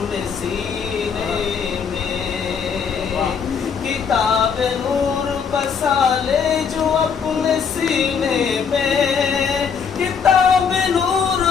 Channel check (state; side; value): quieter; right; 6.5 dB